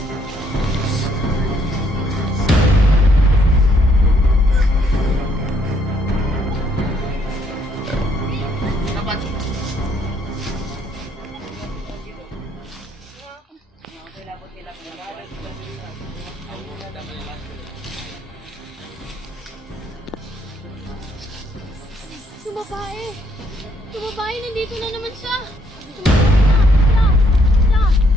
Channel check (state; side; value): normal; both; correlation 0.69